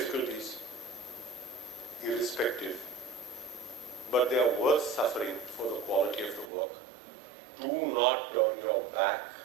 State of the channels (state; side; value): drops out; left; at 6.5 s